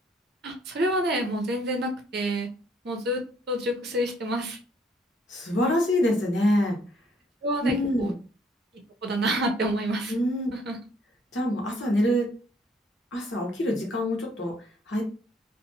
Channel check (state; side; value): normal; both; correlation 0.65